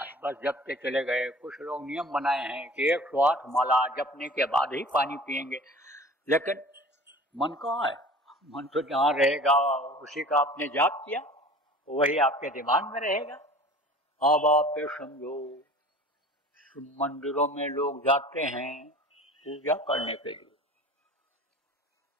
है, बस जपते चले गए। कुछ लोग नियम बनाए हैं कि 108 माला जपने के बाद ही पानी पिएंगे, लेकिन मन कहाँ है? मन तो जहाँ रहेगा उसी का आपने जाप किया, वही आपके दिमाग में रहेगा। अब आप ये समझो मंदिरों में लोग जाते हैं पूजा करने के लिए,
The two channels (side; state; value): both; normal; correlation 0.43